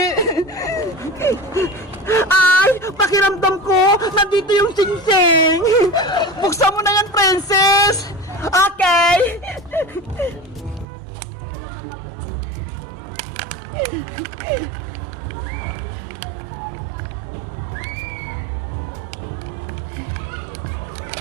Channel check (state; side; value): drops out; left; at 10.9 s